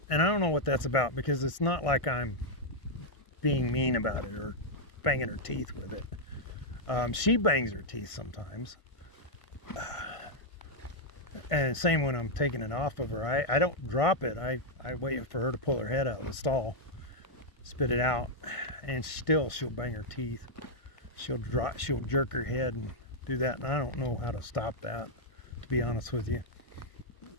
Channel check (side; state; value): right; late; 1.5 ms